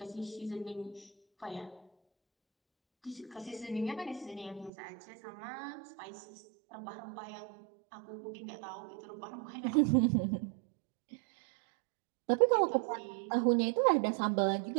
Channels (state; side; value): drops out; left; at 4.7 s